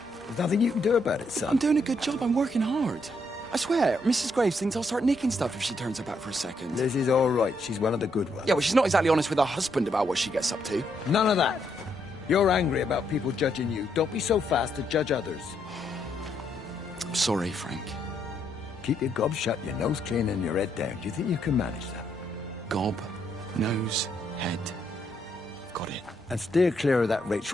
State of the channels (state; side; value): normal; both; correlation 0.75